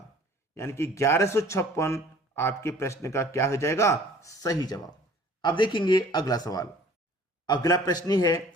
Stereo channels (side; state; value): both; normal; correlation 0.50